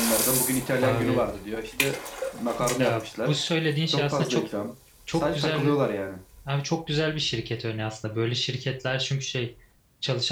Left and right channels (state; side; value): identical; both; correlation 1.00